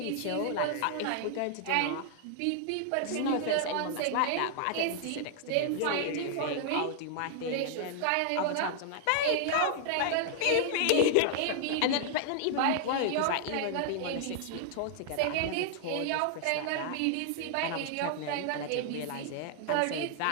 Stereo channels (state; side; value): different; both; correlation -0.01